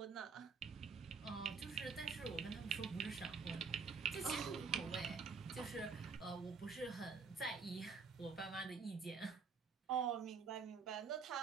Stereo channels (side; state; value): left; quieter; 5.3 dB